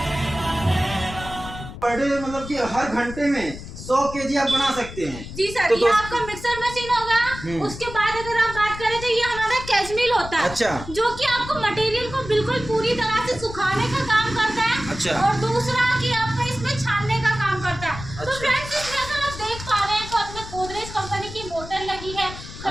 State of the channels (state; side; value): noise; left; rumble, 12 dB below the sound